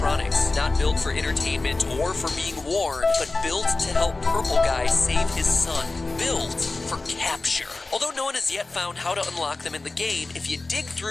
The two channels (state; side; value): quieter; right; 3.4 dB